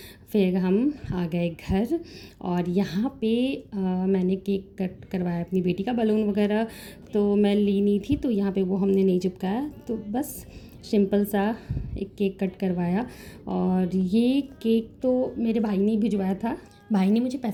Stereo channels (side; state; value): both; identical; correlation 1.00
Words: फिर हम आ गए घर, और यहाँ पे मैंने केक कट करवाया अपनी बेटी का। बलून वगैरह तो मैं ली नहीं थी, तो यहाँ पे वो हमने नहीं चिपकाया, तो बस सिंपल सा एक केक कट करवाया। और ये केक तो मेरे भाई ने भिजवाया था, भाई ने मुझे